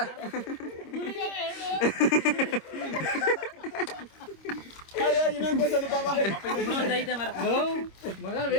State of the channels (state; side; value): late; right; 26 ms